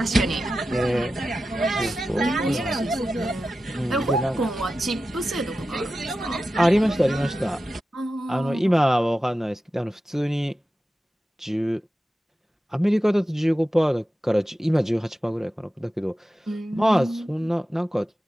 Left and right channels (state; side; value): normal; both; correlation 0.93